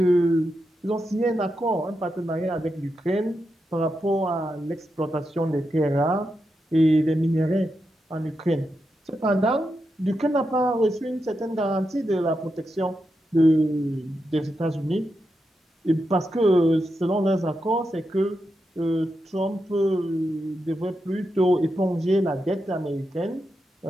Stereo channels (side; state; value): both; normal; correlation 0.86